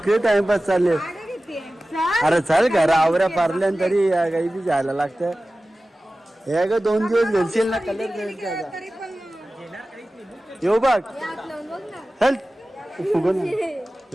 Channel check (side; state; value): both; normal; correlation 0.96